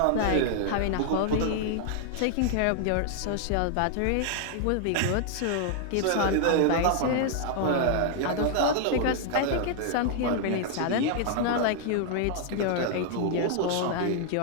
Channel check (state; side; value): different; both; correlation 0.00